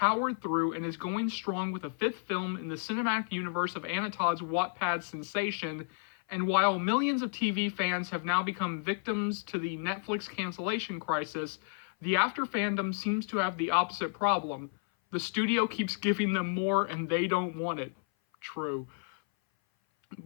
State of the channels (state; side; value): silent; right; 57 dB below the other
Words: through and is going strong with a fifth film in the cinematic universe of Anna Todd's Wattpad sensation. And while millions of TV fans have now become victims to the Netflix cancellation crisis, the After fandom seems to have the opposite problem. The studio keeps giving them more and they don't want it. True.